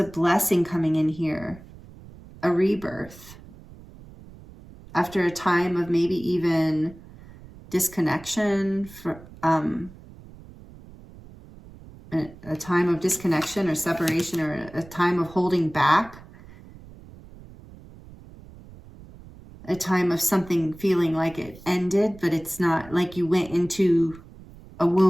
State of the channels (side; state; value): right; noise; rumble, 20 dB below the sound